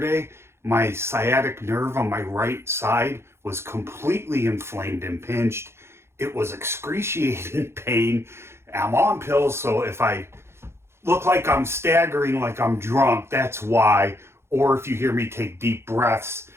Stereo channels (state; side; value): late; left; 0.12 ms